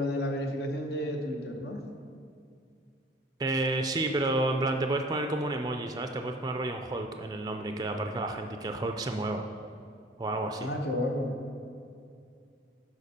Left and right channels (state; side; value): normal; both; correlation 0.48